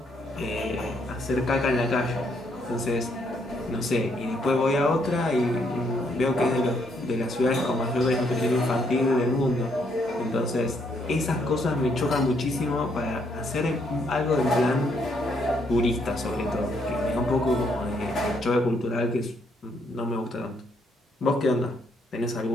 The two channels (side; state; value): both; normal; correlation 0.72